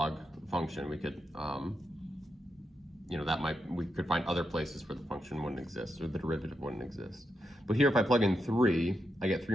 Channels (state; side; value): normal; both; correlation 0.84